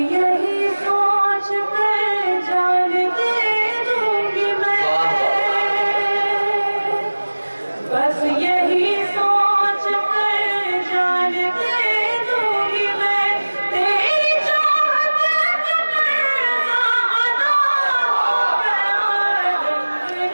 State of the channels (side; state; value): both; inverted; correlation -1.00